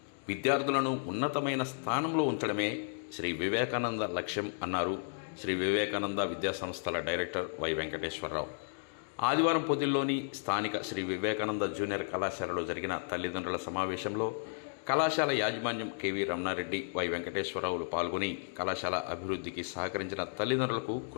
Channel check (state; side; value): silent; right; digital silence